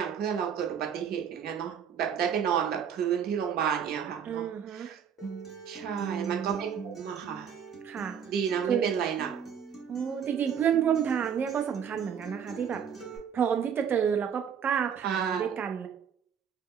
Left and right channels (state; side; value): quieter; left; 7.8 dB